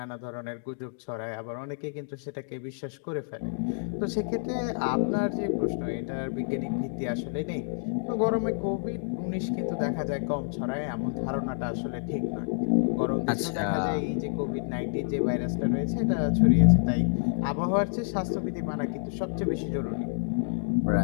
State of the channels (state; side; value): silent; right; digital silence